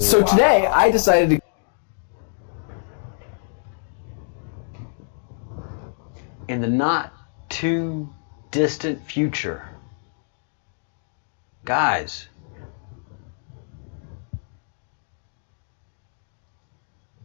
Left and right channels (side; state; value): right; silent; digital silence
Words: today I decided to in the not too distant future. Guys,